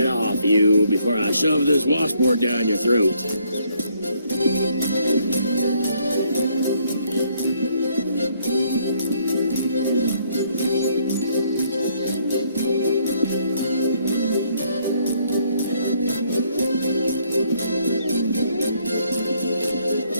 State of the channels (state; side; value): inverted; both; correlation -0.69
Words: off, you, before I shove this washboard down your throat.